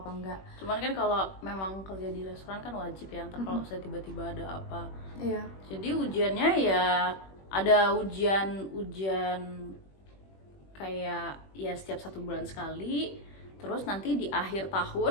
apa enggak. Cuman kan kalau memang kerja di restoran kan wajib ya, ntar kalau saya tiba-tiba ada apa. Iya. Jadi ujiannya ya ada ujian kayak ya setiap 1 bulan sekali. Terus nanti di akhir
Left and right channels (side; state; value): right; late; 21 ms